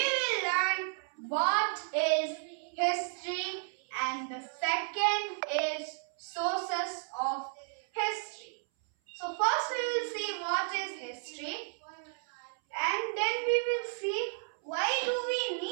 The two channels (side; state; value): left; silent; 56 dB below the other